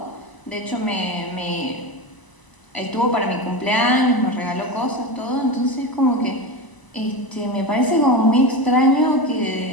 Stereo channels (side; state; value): right; late; 1.0 ms